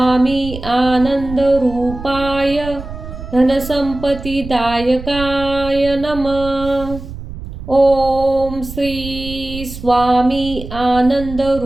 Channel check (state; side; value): noise; right; rumble, 11 dB below the sound